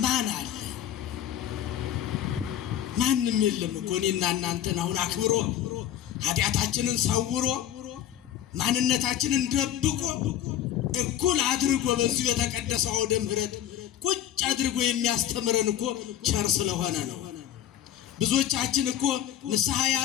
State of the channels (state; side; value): quieter; right; 11.2 dB